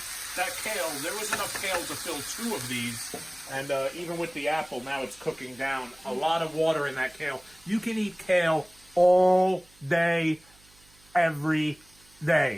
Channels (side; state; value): right; noise; hum, 28 dB below the sound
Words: That kale, there was enough kale to fill 2 of these, and even with the apple, now it's cooking down. A lot of water in that kale. You can eat kale all day, every